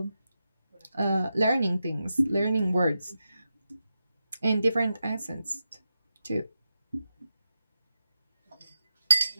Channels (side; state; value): both; inverted; correlation -0.89